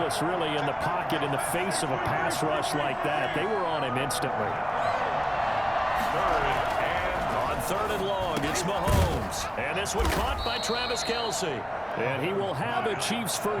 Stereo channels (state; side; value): identical; both; correlation 1.00